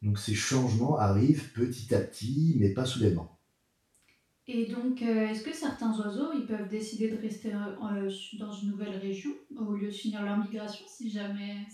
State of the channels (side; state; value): both; identical; correlation 1.00